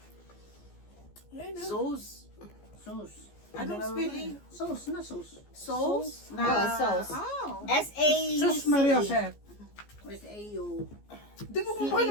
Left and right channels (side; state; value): right; late; 14 ms